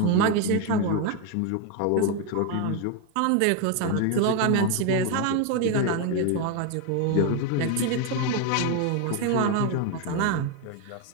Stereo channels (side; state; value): both; different; correlation 0.01